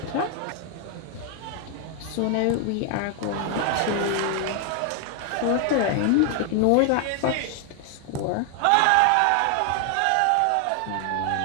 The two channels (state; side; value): different; both; correlation 0.00